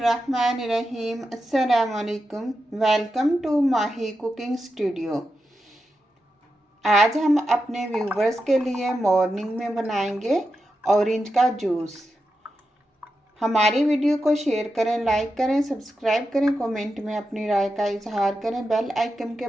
अस्सलाम वालेकुम। Welcome to Mahi cooking studio. आज हम अपने व्यूवर्स के लिए मॉर्निंग में बनाएंगे ऑरेंज का जूस। हमारी वीडियो को शेयर करें, लाइक करें, सब्सक्राइब करें, कमेंट में अपनी राय का इजहार करें, बेल आइकन के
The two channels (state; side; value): normal; both; correlation 0.88